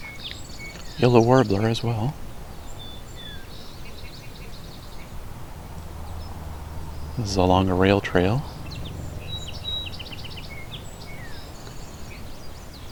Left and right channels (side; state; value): both; identical; correlation 1.00